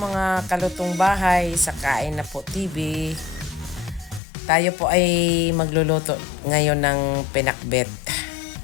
kalutong bahay sa Kain na po TV. Tayo po ay magluluto ngayon ng pinakbet.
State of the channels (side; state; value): right; drops out; at 4.2 s